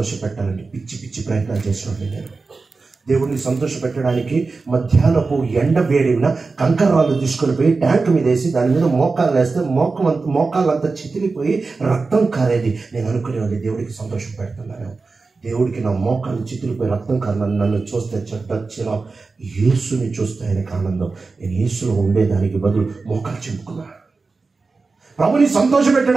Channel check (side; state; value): left; quieter; 4.1 dB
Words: పెట్టాలని పిచ్చి ప్రయత్నాలు చేసినట్టు నేను. దేవుణ్ణి సంతోష పెట్టడానికి మధ్యాహ్నపు ఎండ వేడిన కంకరాలు తీసుకొని పోయి ట్యాంక్ మీద వేసి దాని మీద మోకాలు వేస్తే మోకాళ్ళంతా చితిలిపోయి రక్తం కారేది. నేను అనుకునేవాడిని దేవుడికి సంతోషం పెడుతున్నాను. దేవుడికి నా మోకాలు చితిలిపోయి రక్తం కారణం నన్ను చూస్తే చెడ్డ యేసుని చూస్తే ఆయనకు ఆనందం. నేను యేసులో ఉండేదానికి బదులు మోకాలు చెప్పుకున్నా. ప్రభుని సంతోష